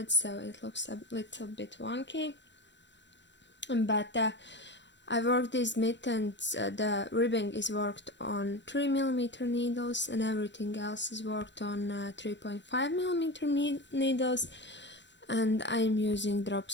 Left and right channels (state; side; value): late; right; 0.52 ms